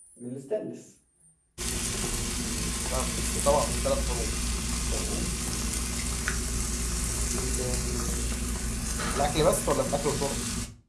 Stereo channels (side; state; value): both; identical; correlation 1.00